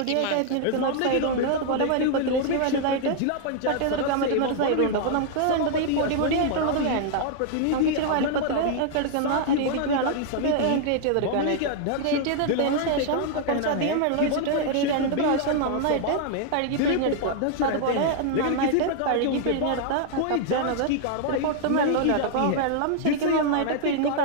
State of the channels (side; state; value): both; different; correlation -0.01